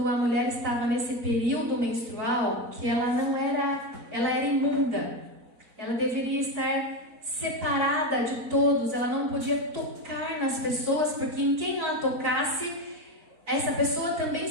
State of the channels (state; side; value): late; left; 4.5 ms